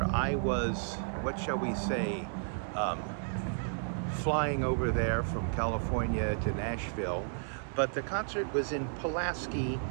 I was, what shall we say, um, flying over there from California to Nashville. But the concert was in Pulaski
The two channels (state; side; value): silent; left; digital silence